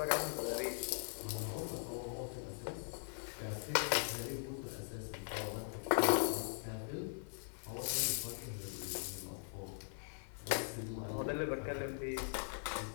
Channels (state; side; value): silent; right; 50 dB below the other